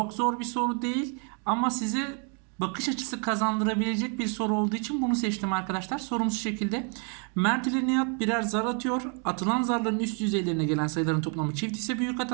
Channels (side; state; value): left; quieter; 39.1 dB